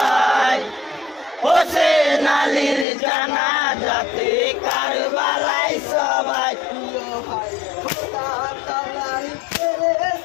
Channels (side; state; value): right; drops out; at 2.9 s